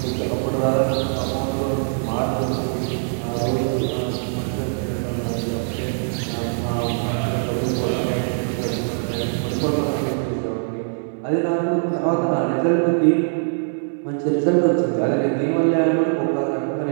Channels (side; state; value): left; silent; 64 dB below the other